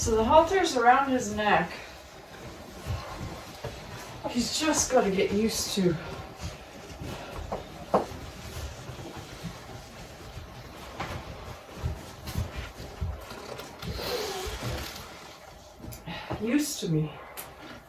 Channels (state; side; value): identical; both; correlation 1.00